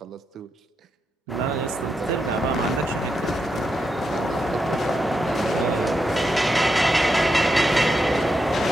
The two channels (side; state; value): both; normal; correlation 0.85